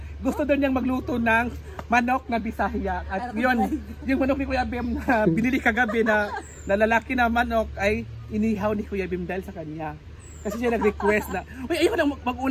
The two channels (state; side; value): identical; both; correlation 1.00